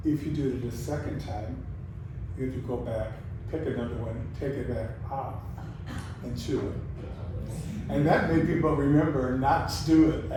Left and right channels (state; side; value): identical; both; correlation 1.00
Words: If you do it a second time, you have to go back, pick another one, take it back off, and chew it. And that made people remember not to do it,